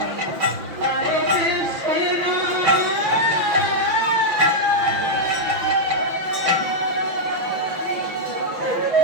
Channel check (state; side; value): late; left; 5.9 ms